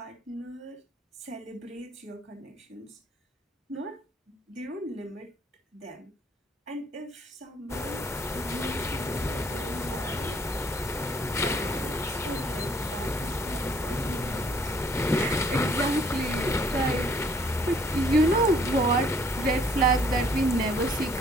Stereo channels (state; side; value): normal; both; correlation 0.61